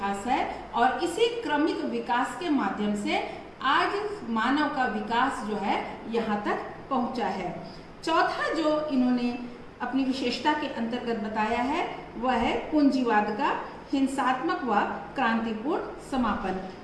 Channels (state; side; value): identical; both; correlation 1.00